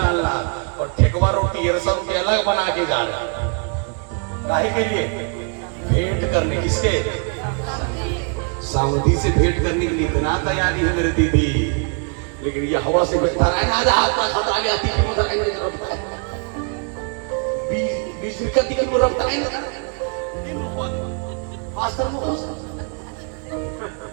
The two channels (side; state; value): left; quieter; 38.6 dB